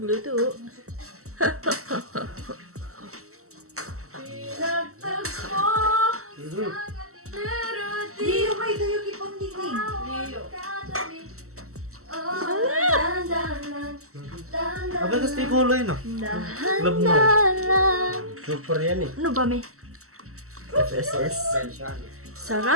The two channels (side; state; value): left; late; 0.63 ms